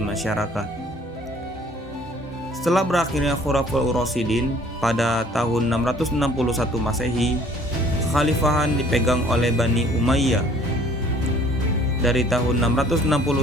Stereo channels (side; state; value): both; normal; correlation 0.55